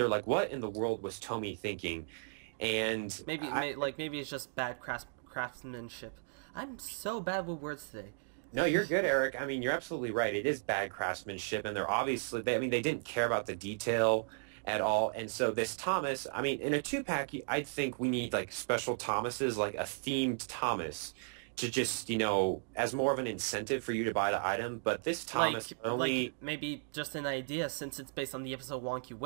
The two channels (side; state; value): left; silent; digital silence